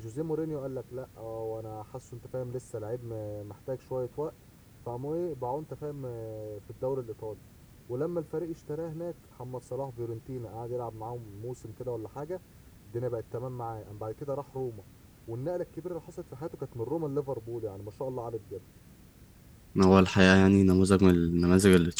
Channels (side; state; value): both; identical; correlation 1.00